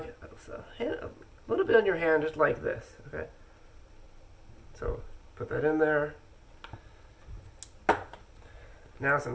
a little bit on your hand, just like this. Okay. So put that in there. Now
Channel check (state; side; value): identical; both; correlation 1.00